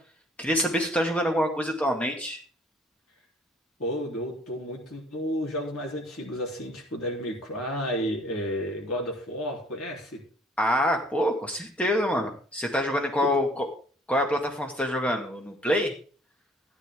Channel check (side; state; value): both; normal; correlation 0.56